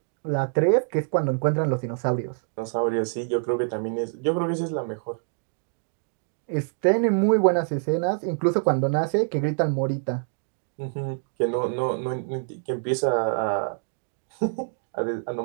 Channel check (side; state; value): left; silent; digital silence